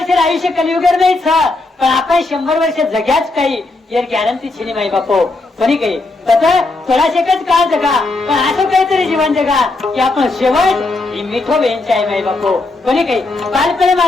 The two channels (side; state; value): right; quieter; 3.2 dB